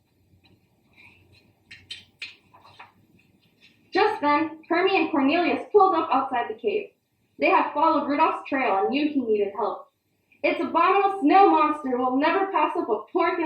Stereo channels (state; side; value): identical; both; correlation 1.00